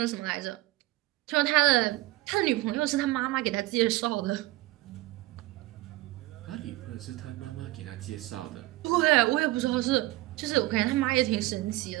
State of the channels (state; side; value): quieter; left; 18.8 dB